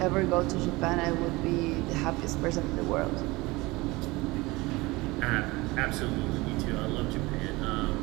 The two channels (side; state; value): left; quieter; 22.2 dB